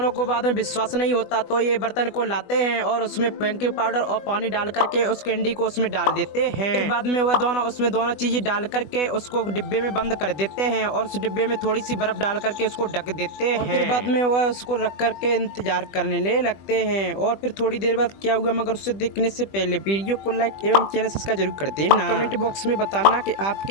को बाद में विश्वास नहीं होता तो ये बर्तन को लाते हैं और उसमें बेकिंग पाउडर और पानी डाल करके उस कैंडी को उसमें डाल देते हैं। बाद में वह दोनों उसमें दोनों चीजें डाल करके उसको डिब्बे में बंद कर देते हैं और उस डिब्बे में थोड़ी सी बर्फ डाल करके उसको ढक देते हैं। फिर बाद में वह उसको रख करके इंतजार करने लगते हैं। और फिर थोड़ी देर बाद क्या हुआ, मगर उससे देखने से पहले वीडियो को लाइक एवं चैनल सब्सक्राइब जरूर कर देना। कमेंट बॉक्स में बताना कि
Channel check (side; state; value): right; late; 20 ms